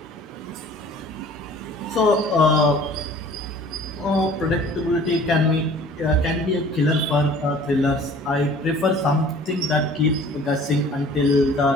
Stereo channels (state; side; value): normal; both; correlation 0.49